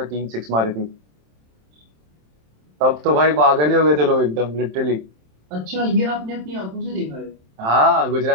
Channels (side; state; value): left; late; 27 ms